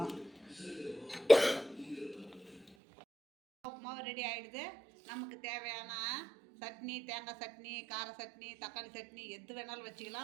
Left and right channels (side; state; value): left; drops out; at 2.7 s